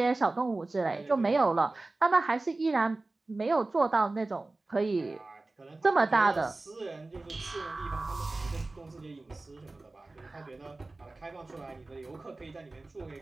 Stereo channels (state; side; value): quieter; left; 3.2 dB